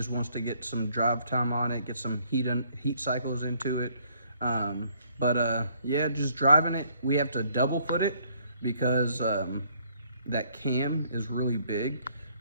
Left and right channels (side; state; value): both; inverted; correlation -0.65